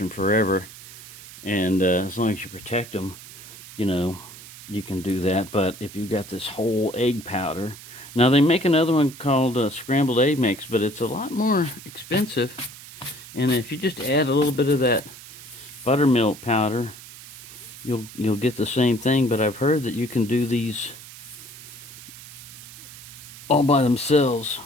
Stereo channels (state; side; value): noise; right; hiss, 16 dB below the sound